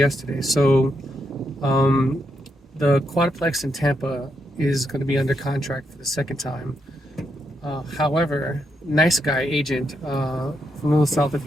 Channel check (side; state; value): both; normal; correlation 0.81